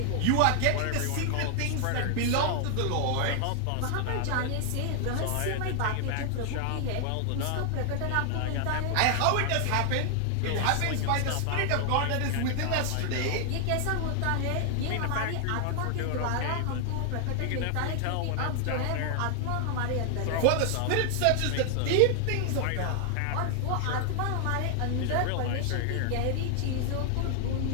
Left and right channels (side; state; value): both; different; correlation 0.00